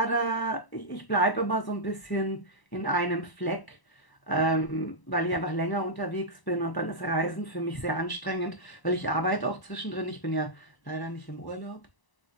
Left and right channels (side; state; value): right; late; 1.0 ms